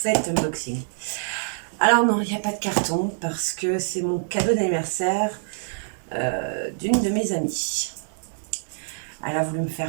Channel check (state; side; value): silent; left; 62 dB below the other